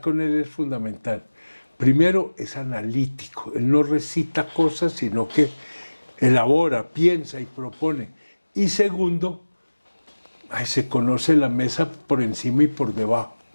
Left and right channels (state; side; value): inverted; both; correlation -1.00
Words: con él es fundamental. Primero, es analítico, él no recita cosas, sino que elabora, piensa y propone. Y segundo, se conoce la mesa por encima y por debajo.